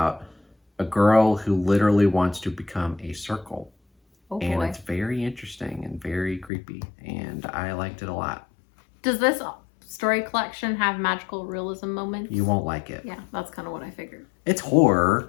a girl who literally wants to become a circle. Oh boy. And it's very interesting and very creepy, and I liked it a lot. Does this story collection have magical realism moments? You won't like it. Yeah, that's kind of what I figured. It's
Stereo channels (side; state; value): right; drops out; at 6.5 s